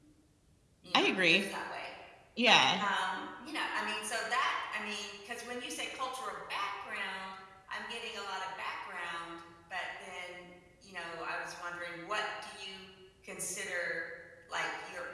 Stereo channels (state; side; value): identical; both; correlation 1.00